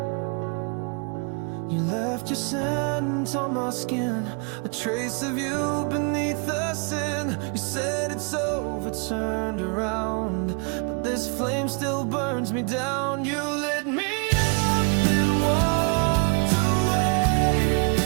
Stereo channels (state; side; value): quieter; left; 34.0 dB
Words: You left your scent on my skin, a trace of you beneath the sin. You said it's over, turned around, but this flame still burns me down. You lit me up and walked away,